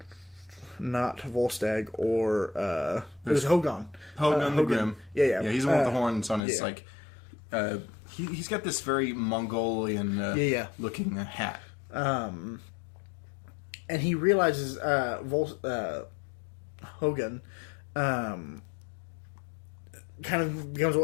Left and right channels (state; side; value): drops out; right; at 6.4 s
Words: Not Volstagg or it was Hogun. Hogun the Grim. Yeah. He's the one with the horns on his he's got this very Mongolian looking hat. And he realizes Hogun kind of becomes